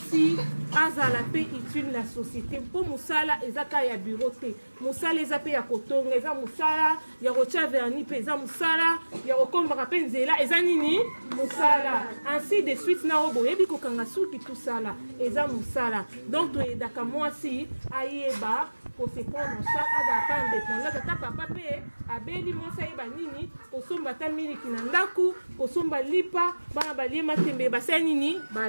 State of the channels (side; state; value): both; inverted; correlation -1.00